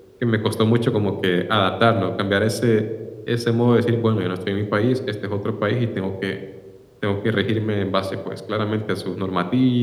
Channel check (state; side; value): identical; both; correlation 1.00